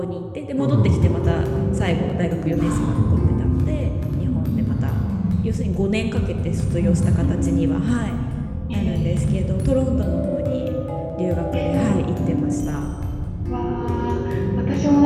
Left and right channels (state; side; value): identical; both; correlation 1.00